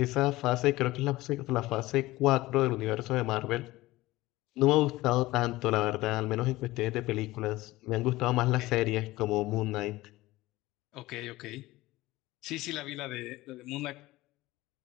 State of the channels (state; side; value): quieter; right; 18.5 dB